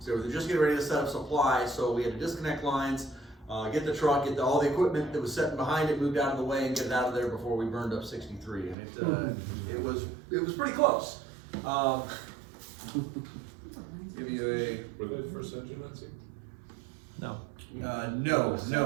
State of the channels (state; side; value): drops out; left; at 8.8 s